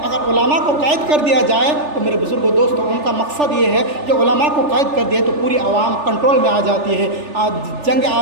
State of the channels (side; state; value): left; late; 3.4 ms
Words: اگر علماء کو قید کر دیا جائے تو میرے بزرگوں دوستوں، ان کا مقصد یہ ہے کہ علماء کو قید کر دیا تو پوری عوام کنٹرول میں آ جاتی ہے۔ جنگ